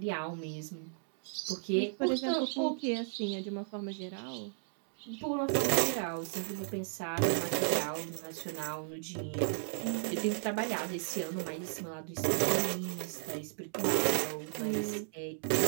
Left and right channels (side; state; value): left; silent; digital silence